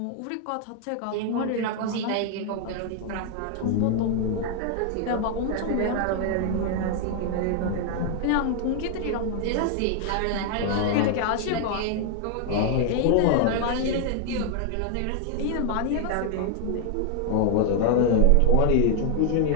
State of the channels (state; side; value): different; both; correlation 0.00